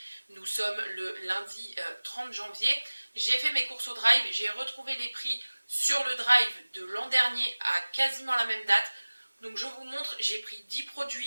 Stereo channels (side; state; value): both; inverted; correlation -1.00